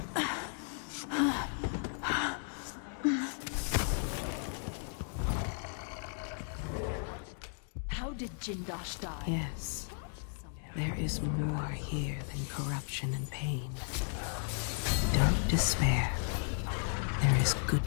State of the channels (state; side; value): silent; right; 54 dB below the other